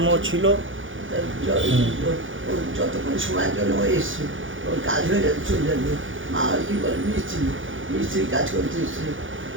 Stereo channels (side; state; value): left; late; 0.57 ms